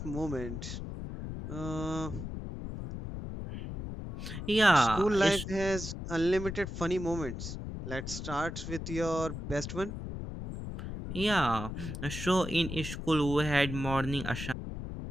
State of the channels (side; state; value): left; noise; rumble, 7 dB below the sound